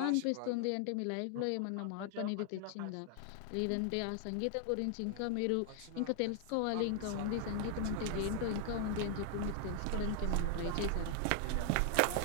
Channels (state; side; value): different; both; correlation 0.00